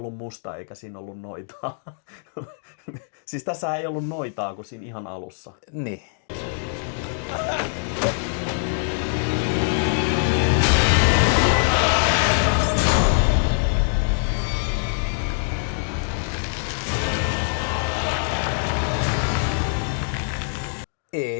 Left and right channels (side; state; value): right; silent; digital silence